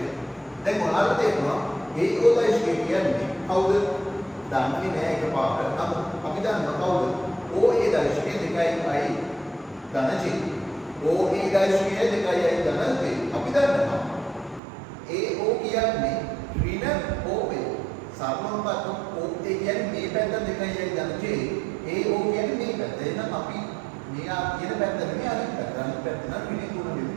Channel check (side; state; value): left; drops out; at 14.6 s